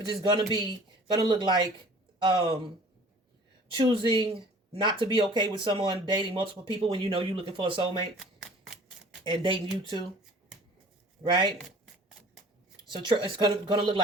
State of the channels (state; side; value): normal; both; correlation 0.49